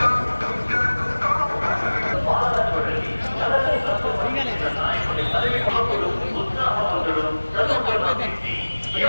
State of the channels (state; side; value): inverted; both; correlation -1.00